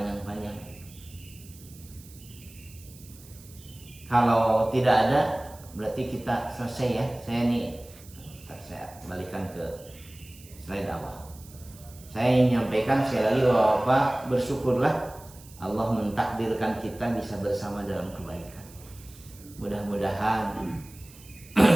Kalau tidak ada, berarti kita selesai ya. Saya balikan ke slide awal. Saya ingin menyampaikan sekali lagi bahwa Bapak bersyukurlah Allah mentakdirkan kita bisa bersama dalam kebaikan. Mudah-mudahan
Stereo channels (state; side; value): noise; right; hiss, 21 dB below the sound